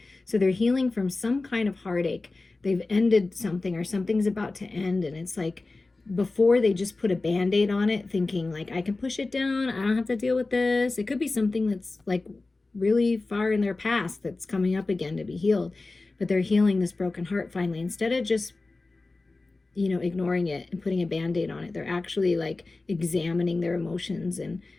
So they're healing from some kind of heartache. They've ended something or something's about to end, and it's like before they just put a Band-Aid on it thinking like, I can push it down. I don't have to deal with this. It could be something that's like really far in their past that's coming up again to be healed. But they're healing this broken heart finally. Instead of just, ignoring it and putting a Band-Aid on it, they're actually like examining their emotions and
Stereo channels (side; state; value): right; quieter; 3.4 dB